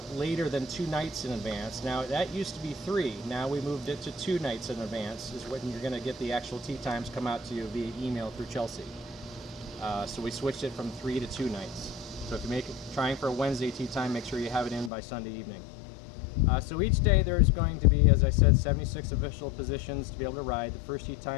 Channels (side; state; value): right; drops out; at 14.9 s